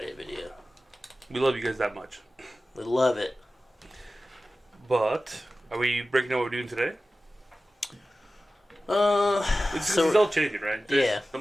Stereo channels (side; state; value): both; normal; correlation 0.95